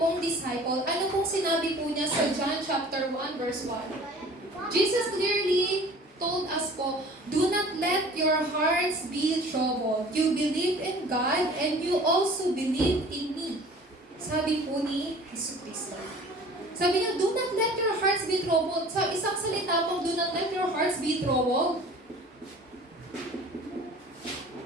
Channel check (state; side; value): normal; both; correlation 0.46